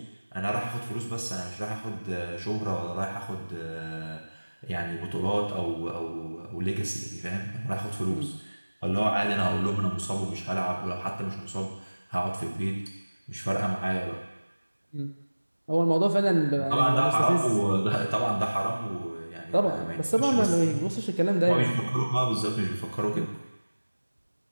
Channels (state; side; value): inverted; both; correlation -1.00